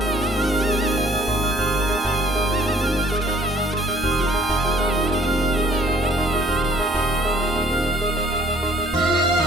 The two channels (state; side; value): normal; both; correlation 0.57